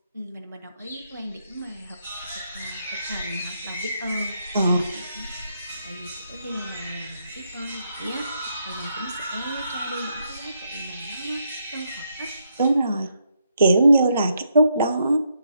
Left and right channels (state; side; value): inverted; both; correlation -0.78